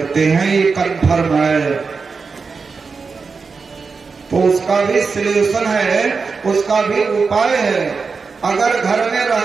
हैं, ये कन्फर्म है। तो उसका भी सलूशन है, उसका भी उपाय है। अगर घर में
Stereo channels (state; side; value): quieter; left; 4.8 dB